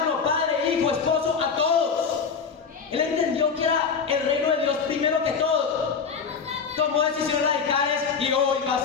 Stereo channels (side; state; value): right; quieter; 5.8 dB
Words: padre, hijo, esposo, a todos. Él entendió que era el reino de Dios primero que todo. Tomó decisiones radicales y hoy va a